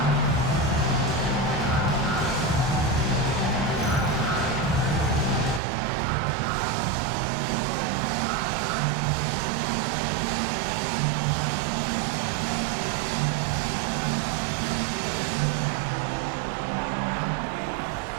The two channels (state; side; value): drops out; left; at 5.6 s